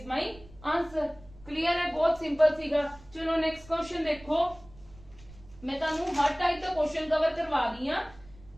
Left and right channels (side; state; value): right; noise; rumble, 22 dB below the sound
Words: ਮਾਈ ਆਨਸਰ ਕਲੀਅਰ ਹੈ ਬਹੁਤ ਸਿੰਪਲ ਸੀਗਾ ਚਲੋ ਨੈਕਸਟ ਕੁਐਸਚਨ ਦੇਖੋ ਮੈਂ ਤੁਹਾਨੂੰ